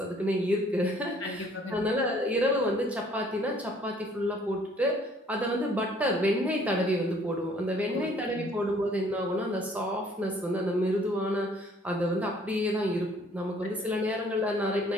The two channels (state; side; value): normal; both; correlation 0.59